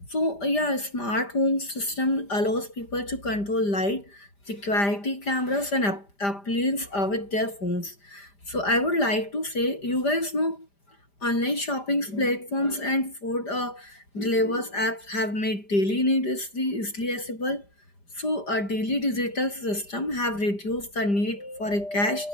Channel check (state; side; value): late; right; 5.0 ms